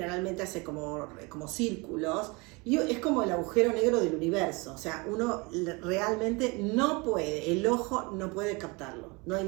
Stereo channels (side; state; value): left; quieter; 27.2 dB